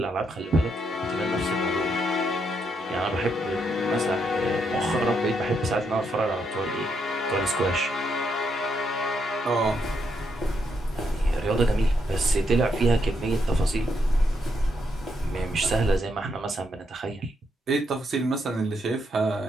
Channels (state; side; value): normal; both; correlation 0.78